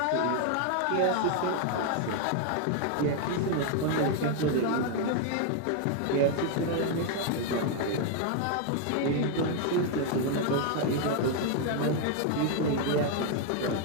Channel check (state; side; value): different; both; correlation 0.01